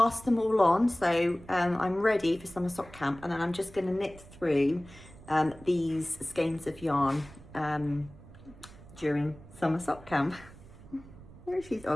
them all on, so I'm ready for summer sock camp. And then I'm just going to knit through these skeins of yarn during summer sock camp. There she is.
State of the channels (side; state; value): right; noise; rumble, 20 dB below the sound